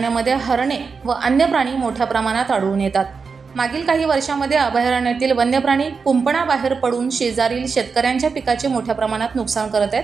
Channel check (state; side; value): quieter; left; 5.1 dB